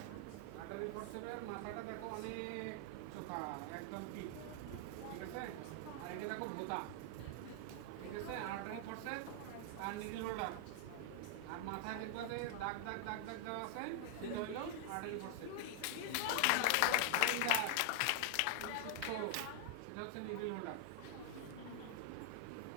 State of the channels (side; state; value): both; different; correlation 0.00